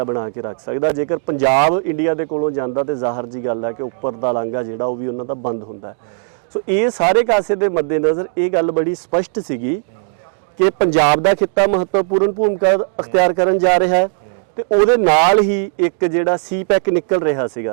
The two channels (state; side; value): silent; left; digital silence